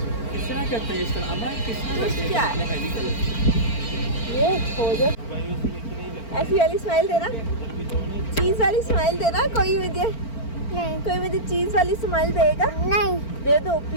तरह करते हैं इस तरह? जूस क्या है? ये हो जाए। ऐसी वाली स्माइल देना, चीज वाली स्माइल देना। कोई मुझे चीज वाली स्माइल देगा? नहीं दे दो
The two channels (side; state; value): right; late; 4.4 ms